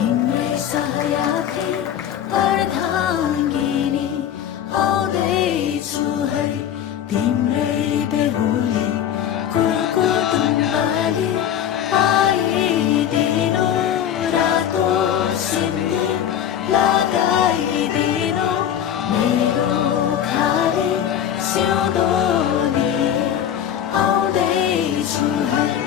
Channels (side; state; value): right; quieter; 9.9 dB